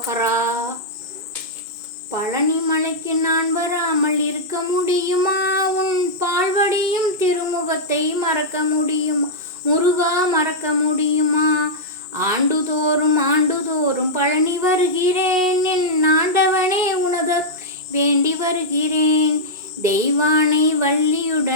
பழனி மலைக்கு நான் வராமல் இருக்க முடியுமா, உன் பால்வடியும் திருமுகத்தை மறக்க முடியுமா, முருகா மறக்க முடியுமா, ஆண்டுதோறும் பழனி வருகிறேன், என் ஆண்டவனே உனது வேண்டி வருகிறேன், தெய்வானை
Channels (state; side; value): late; left; 2.1 ms